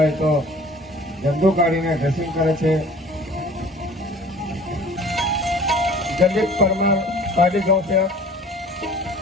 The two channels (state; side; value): normal; both; correlation 0.47